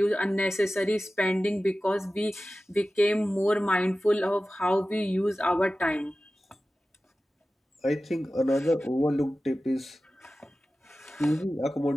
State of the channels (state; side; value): normal; both; correlation 0.95